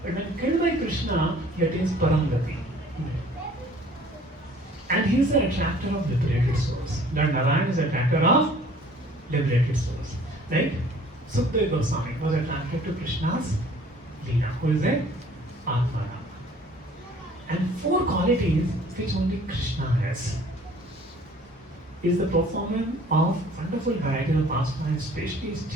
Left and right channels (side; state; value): both; normal; correlation 0.53